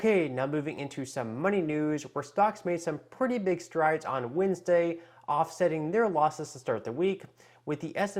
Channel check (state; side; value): identical; both; correlation 1.00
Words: now moving into some money news, where stocks made some pretty big strides on Wednesday, offsetting their losses to start the week, with the